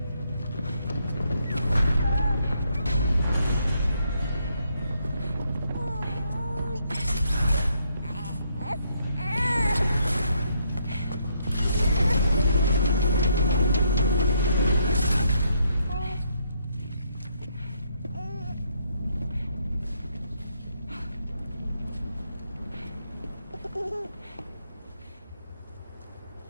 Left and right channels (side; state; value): both; inverted; correlation -0.74